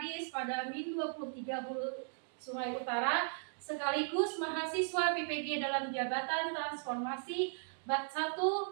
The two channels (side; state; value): left; silent; digital silence